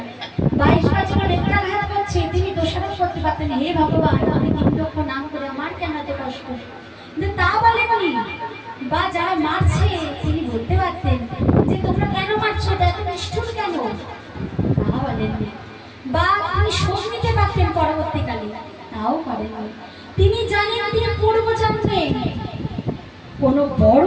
22 বছর নেত্রাঘাত করছে, তিনি দোষারোপ করতে পারতেন, হে ভগবান আমি 3 লক্ষ নাম করে আমার কেন এত কষ্ট, কিন্তু তা বলেননি। বা যারা মারছে তিনি বলতে পারতেন যে তোমরা কেন মারছো, এত নিষ্ঠুর কেন, তা বলেননি। বা তিনি শোক নিতে পারতেন পরবর্তীকালে, তাও করেননি। তিনি জানেন তিনি পূর্বজন্মে কোনো বড়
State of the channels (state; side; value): identical; both; correlation 1.00